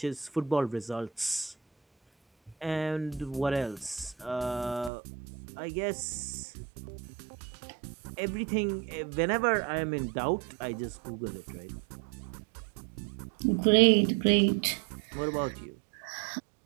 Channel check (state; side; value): drops out; left; at 4.9 s